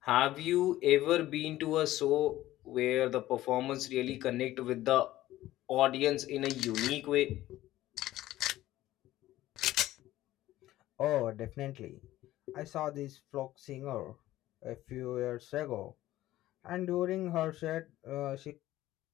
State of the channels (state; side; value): quieter; right; 15.2 dB